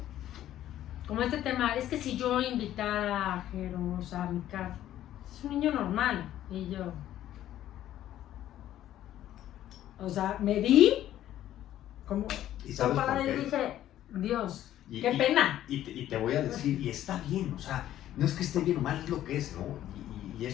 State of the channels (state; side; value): quieter; right; 12.5 dB